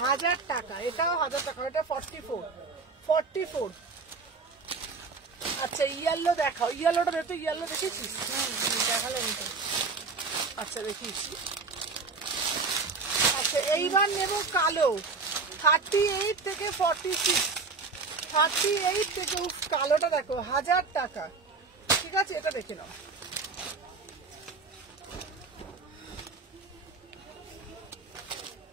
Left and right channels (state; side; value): quieter; left; 4.3 dB